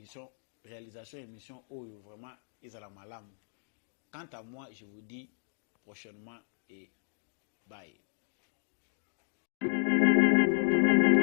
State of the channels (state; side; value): silent; right; digital silence